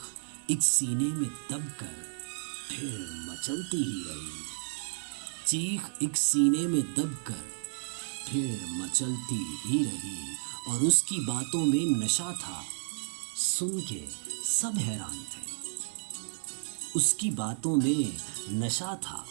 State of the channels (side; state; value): left; silent; 56 dB below the other